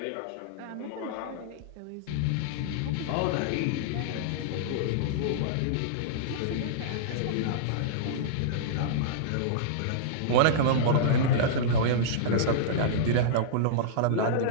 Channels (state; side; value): different; both; correlation -0.03